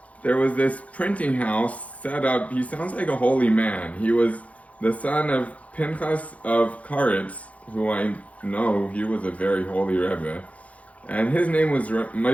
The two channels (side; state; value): right; late; 0.066 ms